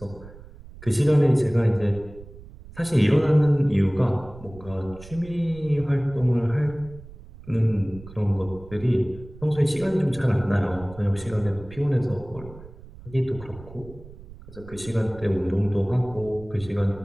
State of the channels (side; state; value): right; noise; rumble, 18 dB below the sound